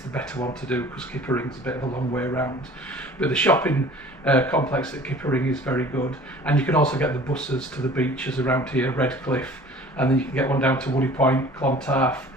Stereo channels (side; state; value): both; normal; correlation 0.47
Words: better one to do because Kippering's a bit of a long way around. But the shopping complex at Kippering is very good, and you can also get the buses to the beaches around here, Redcliffe, and then you can get one down to Woody Point, Clontarf,